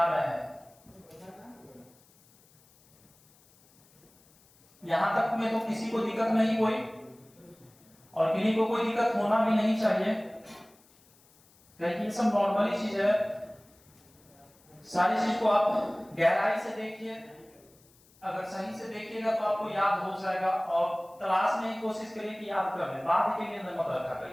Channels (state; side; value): noise; left; hiss, 29 dB below the sound